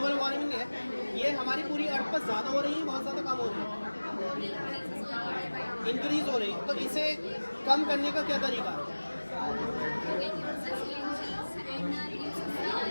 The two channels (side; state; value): both; inverted; correlation -1.00